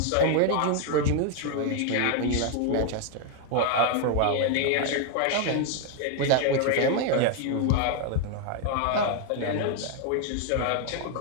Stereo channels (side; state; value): both; different; correlation 0.00